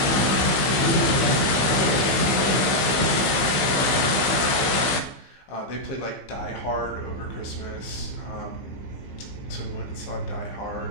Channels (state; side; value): late; right; 15 ms